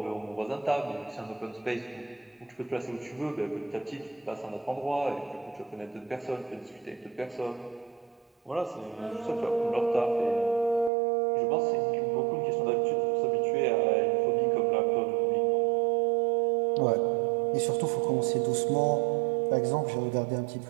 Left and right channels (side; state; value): left; drops out; at 10.9 s